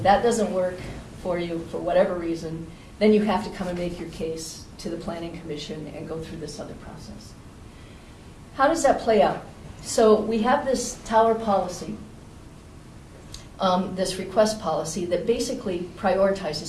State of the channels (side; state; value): both; identical; correlation 1.00